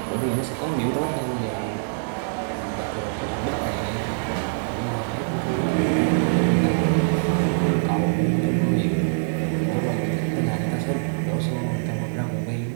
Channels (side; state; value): left; silent; digital silence